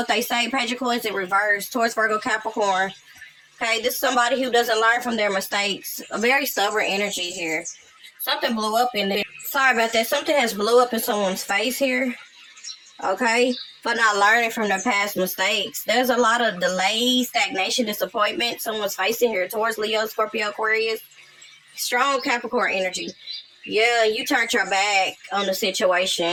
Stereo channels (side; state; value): both; identical; correlation 1.00